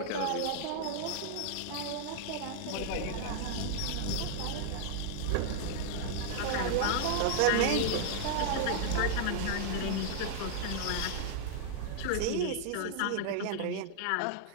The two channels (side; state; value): both; different; correlation -0.01